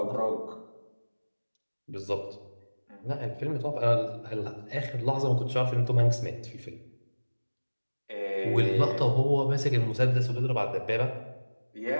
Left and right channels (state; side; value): inverted; both; correlation -1.00